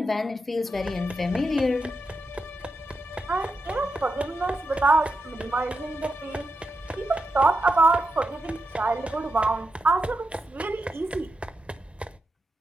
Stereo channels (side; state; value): both; normal; correlation 0.86